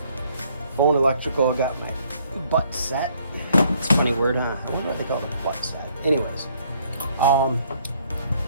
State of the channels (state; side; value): inverted; both; correlation -0.66